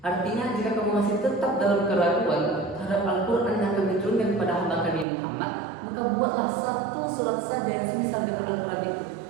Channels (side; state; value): left; drops out; at 5.1 s